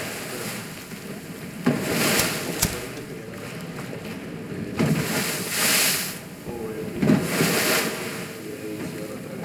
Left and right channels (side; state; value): both; identical; correlation 1.00